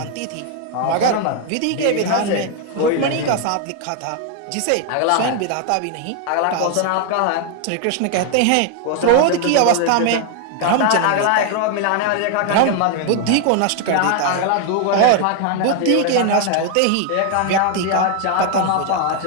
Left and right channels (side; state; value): both; different; correlation 0.00